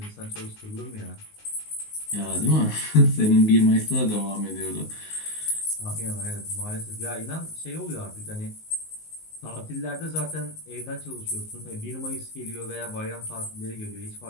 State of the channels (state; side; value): late; right; 19 ms